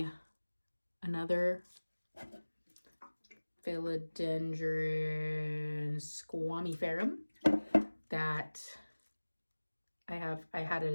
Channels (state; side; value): inverted; both; correlation -1.00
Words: another Philodendron squamiferum that I had it